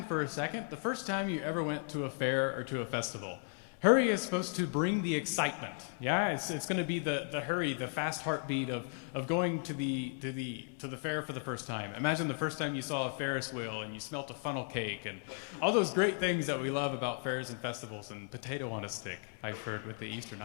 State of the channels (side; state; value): right; silent; 54 dB below the other